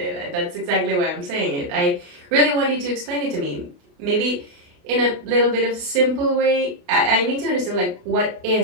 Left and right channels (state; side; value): late; left; 28 ms